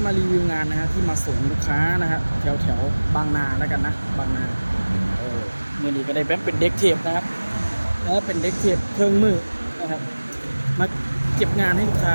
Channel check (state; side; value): inverted; both; correlation -1.00